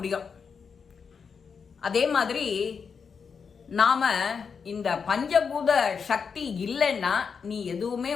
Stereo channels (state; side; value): quieter; right; 6.0 dB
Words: அதே மாதிரி நாம இந்த பஞ்சபூத சக்தி இல்லைன்னா நீ எதுவுமே